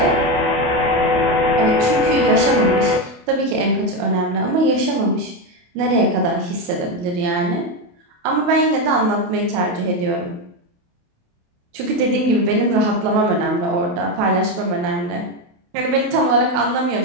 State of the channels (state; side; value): late; left; 28 ms